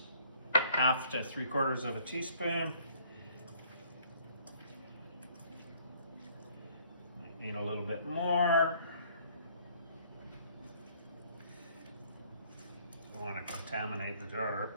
1/2 to 3/4 of a teaspoon. Need a little bit more. Don't want to contaminate the jar.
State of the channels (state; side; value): inverted; both; correlation -0.60